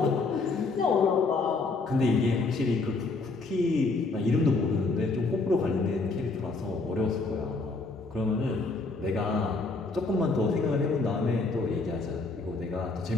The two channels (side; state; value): right; quieter; 3.7 dB